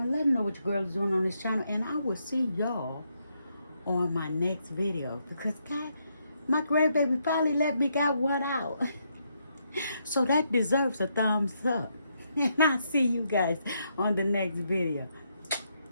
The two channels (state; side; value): inverted; both; correlation -0.78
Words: Let them know what your girl is doing on this channel. And I will see y'all on my next video. Because, God, my grandbaby finally let me got one out. So that deserves a thumbs up. And I'll see you guys on the next video.